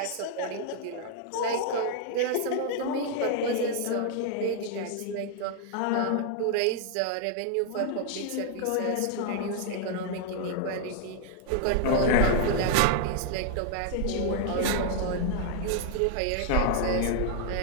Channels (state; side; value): different; both; correlation 0.00